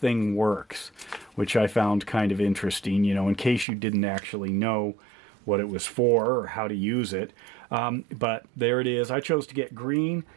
works, which I found kind of interesting, in case you didn't actually know what it was for or how to use it. But there it is. I chose to get green.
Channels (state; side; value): drops out; left; at 3.7 s